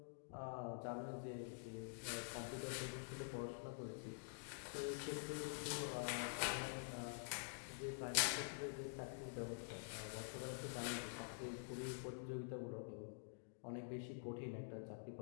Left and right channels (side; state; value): right; silent; digital silence